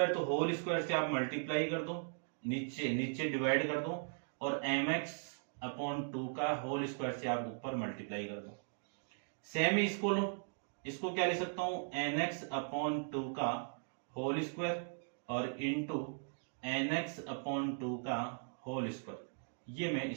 तो होल स्क्वायर से आप मल्टीप्लाई कर दो, नीचे नीचे डिवाइड कर दो, और mx अपॉन 2 का होल स्क्वायर से आप ऊपर मल्टीप्लाई कर दो। सेम ही इसको लो, इसको क्या लिख सकता हूं nx अपॉन 2 का होल स्क्वायर और इंटू nx अपॉन 2 का होल स्क्वायर, ये मैं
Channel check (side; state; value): left; silent; digital silence